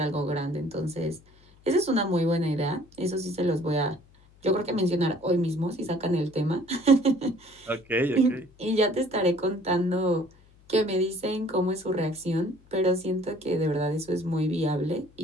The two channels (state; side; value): noise; left; hum, 28 dB below the sound